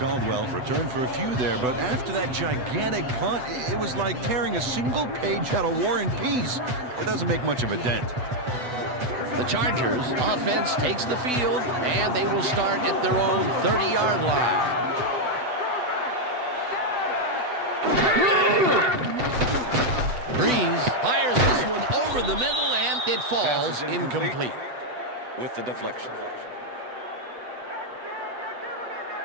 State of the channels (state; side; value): late; left; 8.0 ms